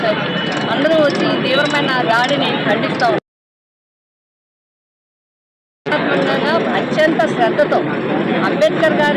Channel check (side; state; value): both; identical; correlation 1.00